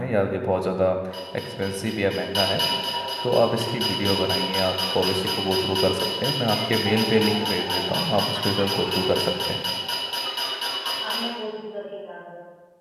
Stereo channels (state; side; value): identical; both; correlation 1.00